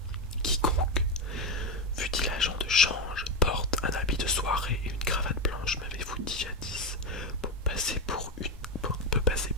Quiconque, fût-il agent de change, porte un habit de soirée et une cravate blanche, m'avez-vous dit jadis, peut passer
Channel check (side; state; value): both; normal; correlation 0.10